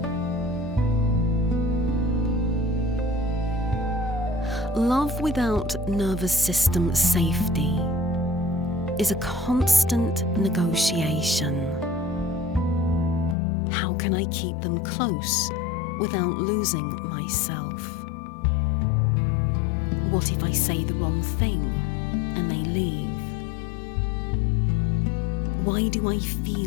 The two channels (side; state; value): right; drops out; at 13.4 s